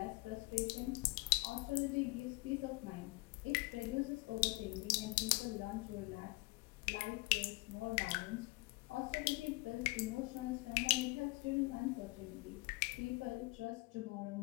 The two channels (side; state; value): right; quieter; 24.7 dB